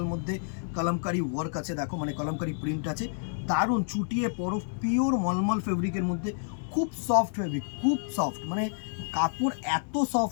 মধ্যে কলমকারি ওয়ার্ক আছে, দেখো মানে কলমকারি প্রিন্ট আছে, দারুণ চুটিয়ে পরো, পিওর মলমল ফেব্রিকের মধ্যে, খুব সফট ফেব্রিক, খুব সফট, মানে কাপড় এত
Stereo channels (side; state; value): right; silent; digital silence